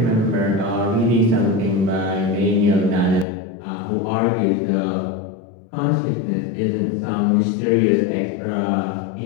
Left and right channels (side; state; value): right; drops out; at 3.2 s